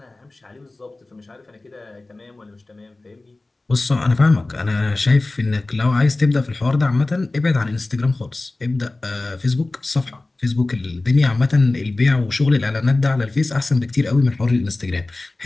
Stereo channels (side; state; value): right; quieter; 3.0 dB